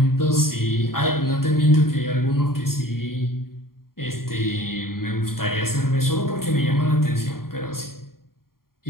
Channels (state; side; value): late; right; 0.92 ms